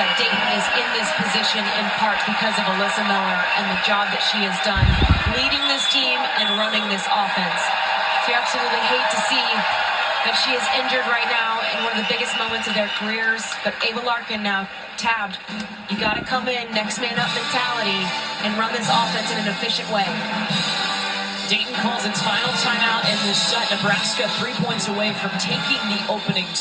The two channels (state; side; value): identical; both; correlation 1.00